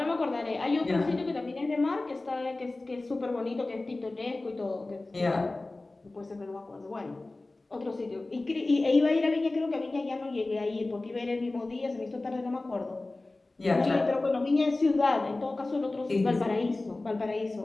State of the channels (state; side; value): quieter; right; 3.0 dB